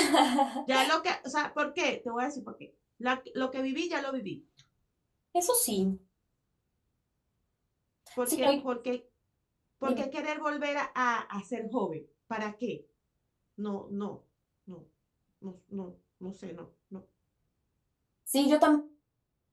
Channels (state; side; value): identical; both; correlation 1.00